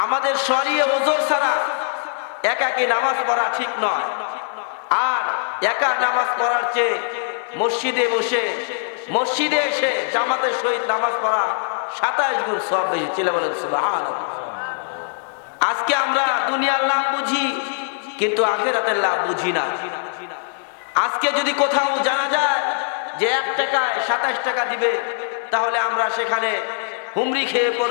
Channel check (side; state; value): right; silent; digital silence